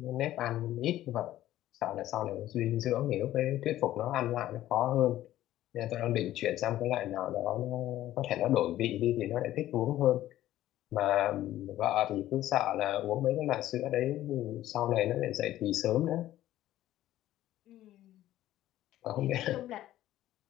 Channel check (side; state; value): right; quieter; 13.9 dB